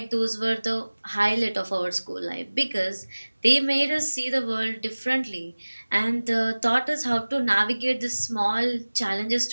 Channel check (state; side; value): inverted; both; correlation -1.00